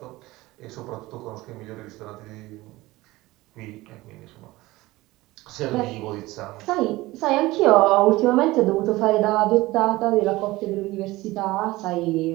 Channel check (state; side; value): quieter; left; 19.2 dB